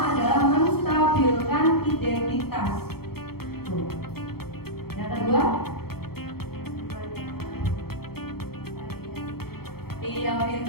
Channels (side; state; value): right; late; 0.95 ms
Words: adalah menstabilkan identitas. Tuh. Yang kedua? Iya,